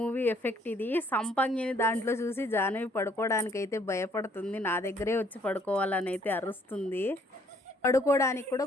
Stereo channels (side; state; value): both; normal; correlation 0.64